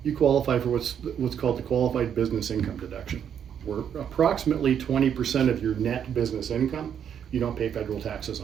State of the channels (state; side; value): quieter; left; 8.6 dB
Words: you qualify for what's called the qualified business income deduction, where approximately 20% of your net business income, you don't pay federal taxes